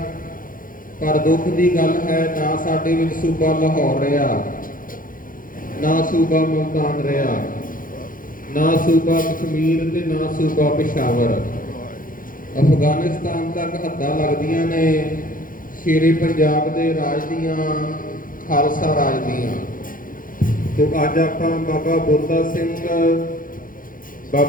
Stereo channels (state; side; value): late; right; 0.40 ms